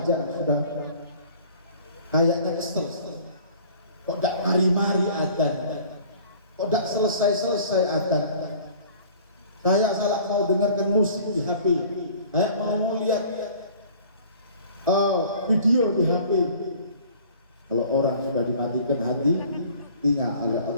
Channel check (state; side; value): inverted; both; correlation -0.49